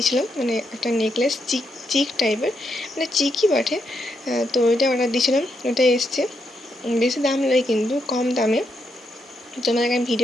মানে একটা নেকলেস, চিক টাইপের, মানে চিকই বটে। তো ওইটা অর্ডার দিয়েছিলাম, ওটা এসছে, বেশি দাম নয় কিন্তু কম দামে। তোমাদেরকে আমি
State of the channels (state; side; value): normal; both; correlation 0.80